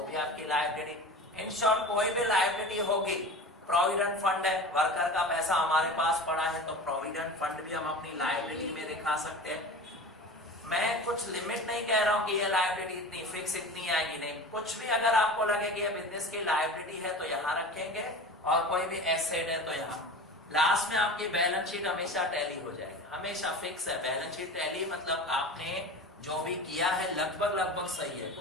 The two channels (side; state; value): both; normal; correlation 0.34